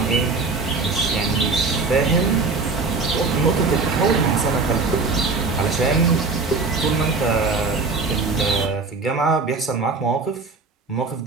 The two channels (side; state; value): left; quieter; 4.1 dB